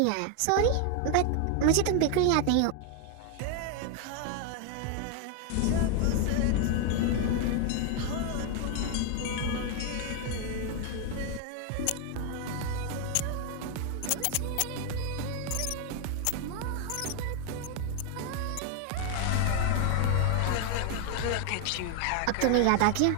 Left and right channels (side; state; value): both; different; correlation 0.00